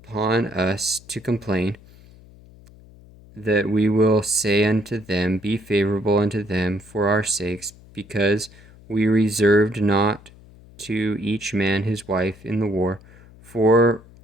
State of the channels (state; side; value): noise; left; hum, 23 dB below the sound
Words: us to complain, that we will say unto them, Be favorable unto them for our sakes, because we reserved not to each man his wife in the war, for